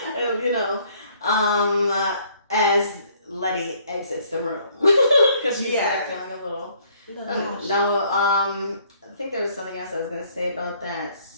As Letty exits the room because she's feeling a little No, I think there was something else I was gonna say about that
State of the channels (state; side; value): inverted; both; correlation -0.63